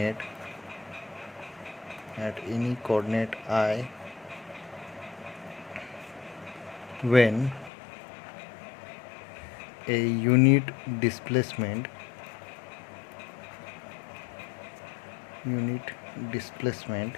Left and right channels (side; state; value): right; drops out; at 7.7 s